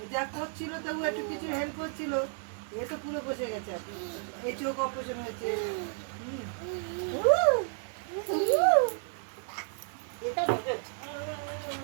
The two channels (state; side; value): silent; left; 56 dB below the other